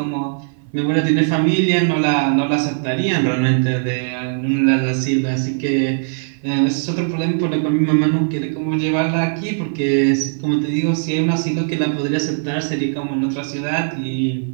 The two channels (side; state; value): left; silent; 56 dB below the other